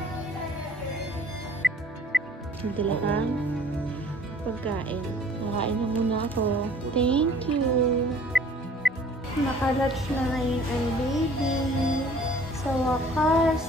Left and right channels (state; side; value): normal; both; correlation 0.53